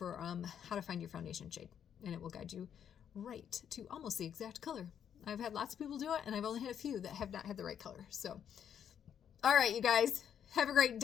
how to find your foundation shade. And it will guide you right to almost the exact color. I've had lots of people do it, and I've only had a few that have not had the right color. So, all right, you guys, have a great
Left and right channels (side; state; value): right; quieter; 8.8 dB